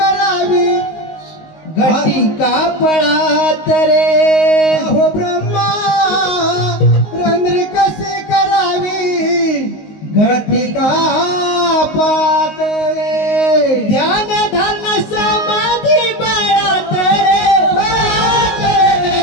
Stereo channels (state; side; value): late; right; 19 ms